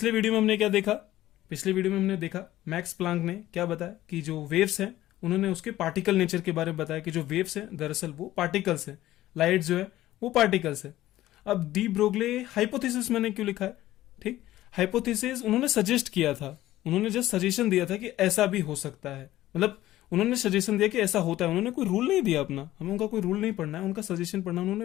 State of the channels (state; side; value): quieter; right; 15.0 dB